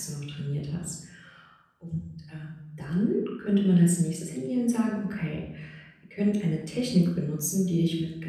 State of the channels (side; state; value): both; identical; correlation 1.00